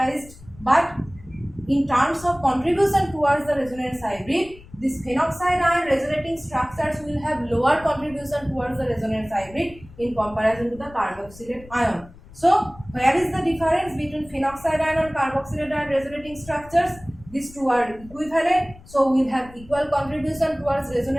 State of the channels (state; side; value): noise; left; rumble, 20 dB below the sound